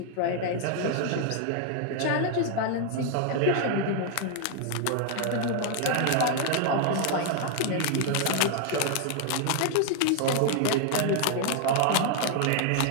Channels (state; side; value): different; both; correlation 0.00